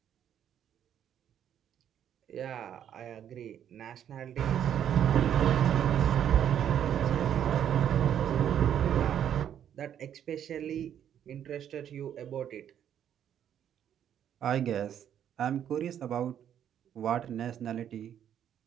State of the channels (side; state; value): left; quieter; 9.7 dB